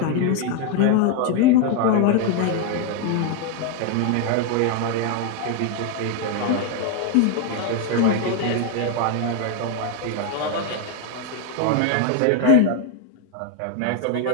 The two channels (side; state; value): both; different; correlation 0.01